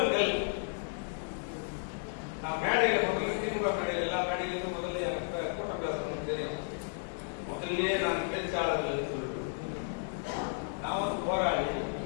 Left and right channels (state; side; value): silent; right; digital silence